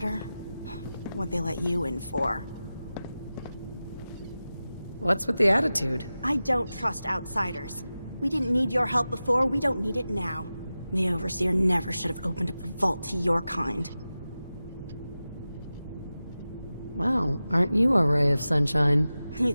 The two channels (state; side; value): inverted; both; correlation -0.94